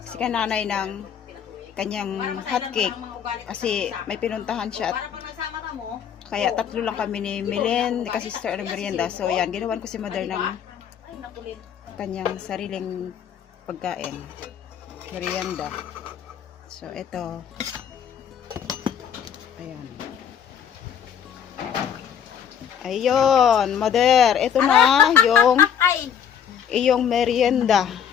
si kananay ng kanyang hot cake kasi may pinuntahan siya at kaya tatlo lang kami ni Milen, ni ka-sister ng merienda. So yan, ginawan ko si mother ng kanyang sariling pagkain, merienda. So ito, ayan. Ayun, mother, ito na yung merienda.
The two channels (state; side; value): quieter; right; 8.4 dB